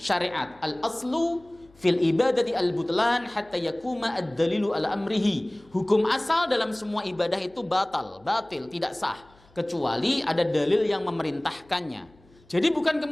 Al-aslu fil ibadati al-butlan hatta yakuma ad-dalilu ala amrihi. Hukum asal dalam semua ibadah itu batil, tidak sah, kecuali ada dalil yang memerintahkannya. Jadi bukan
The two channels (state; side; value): noise; left; hum, 29 dB below the sound